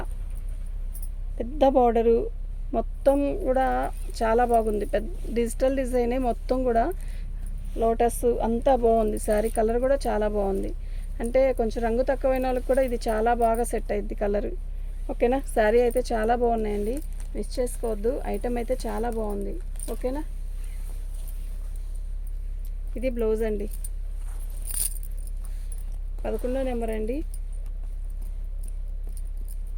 పెద్ద బార్డరు, మొత్తం కూడా చాలా బాగుంది. పెద్ద డిజిటల్ డిజైనే మొత్తం కూడా. లోటస్ అంతా బాగుంది. శారీ కలర్ కూడా చాలా బాగుంది. అంటే కొంచెం రంగు తక్కువైన వాళ్ళకి కూడా ఇది చాలా బాగా సెట్ అయింది కలర్. ఓకేనా, శారీ అయితే చాలా బాగున్నాయండి. మిస్ చేసుకోవద్దు. ఐటమ్ అయితే చాలా బాగుంది. ఓకేనా, ఇది బ్లౌజ్ అండి. 11వ నెంబర్ అండి.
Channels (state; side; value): identical; both; correlation 1.00